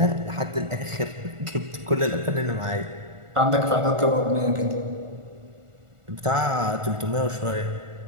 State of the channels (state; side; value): late; left; 1.4 ms